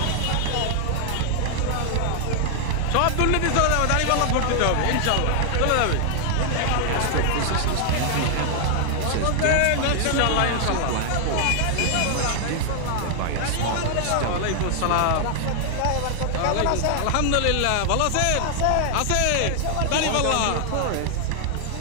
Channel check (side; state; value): both; different; correlation 0.00